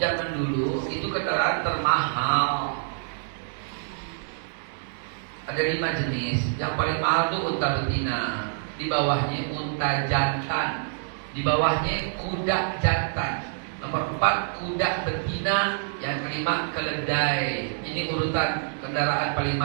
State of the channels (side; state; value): left; silent; 61 dB below the other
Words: dulu itu kendaraan termahal. Ada 5 jenis. Yang paling mahal itu unta betina. Di bawahnya unta jantan. Di bawahnya kuda jantan. Nomor 4 kuda betina. Yang kelima keledai. Ini urutan kendaraan paling